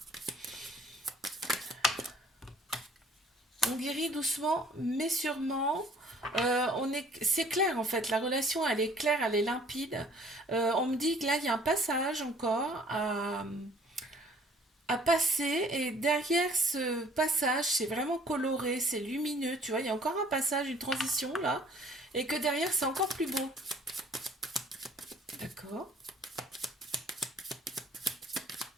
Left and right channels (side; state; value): both; normal; correlation 0.56